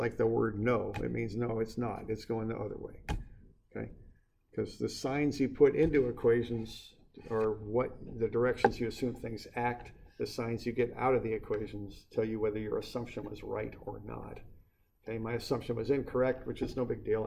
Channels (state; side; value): identical; both; correlation 1.00